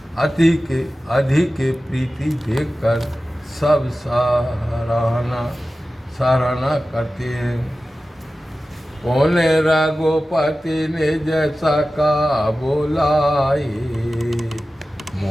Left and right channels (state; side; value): normal; both; correlation 0.95